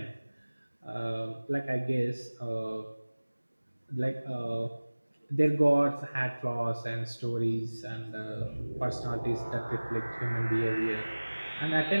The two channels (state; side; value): inverted; both; correlation -1.00